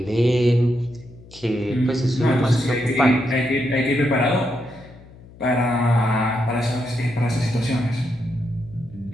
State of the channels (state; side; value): noise; left; hum, 21 dB below the sound